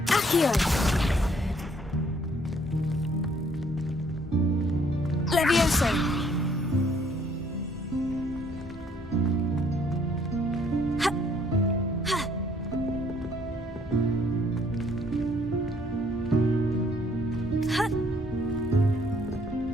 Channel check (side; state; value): both; normal; correlation 0.63